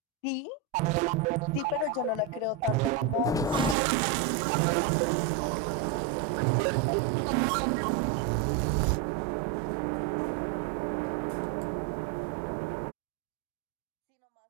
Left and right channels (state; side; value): drops out; left; at 3.8 s